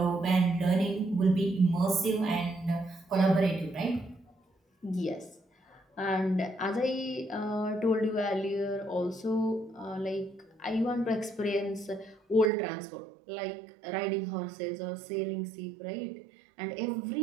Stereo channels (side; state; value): left; drops out; at 12.5 s